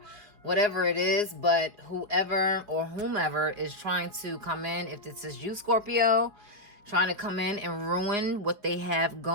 whatever it is. But whoever or whomever is trying to come in, if this is you, Scorpio, trying to come in and ruin what they have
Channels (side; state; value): left; late; 4.6 ms